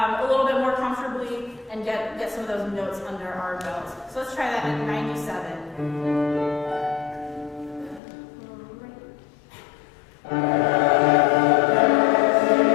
little bit more comfortably and get some of those notes under our belts. So let's try that at 97.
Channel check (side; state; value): right; drops out; at 8.0 s